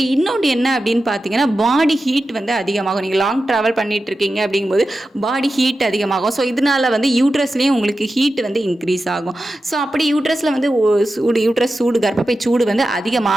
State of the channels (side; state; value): both; normal; correlation 0.92